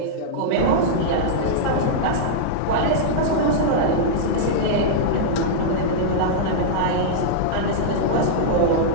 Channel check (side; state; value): both; different; correlation -0.02